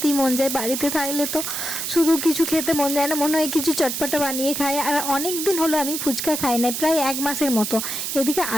মন যায়। বাড়িতে থাকলে তো শুধু কিছু খেতে মন যায় না, মনে হয় কিছু চটপটা বানিয়ে খাই। আর অনেক দিন হলো আমি ফুচকা খাই নাই, প্রায় 1 মাসের মতো। এদিকে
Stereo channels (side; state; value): right; noise; hiss, 3 dB below the sound